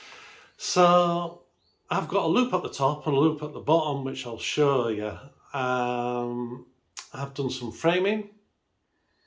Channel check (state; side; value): identical; both; correlation 1.00